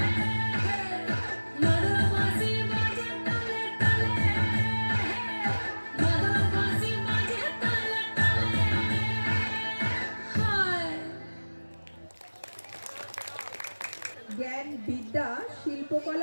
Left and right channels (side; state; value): both; inverted; correlation -1.00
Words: মাদল বাঁশি বাজে তালে তালে, মাদল বাঁশি বাজে তালে তালে। হায় জ্ঞান, বিদ্যা,